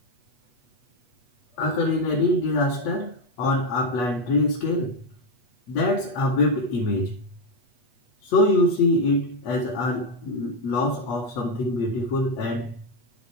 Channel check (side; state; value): right; late; 8.2 ms